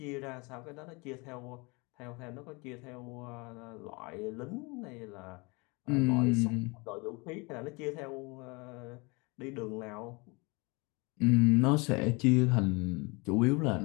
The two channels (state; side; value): quieter; right; 27.9 dB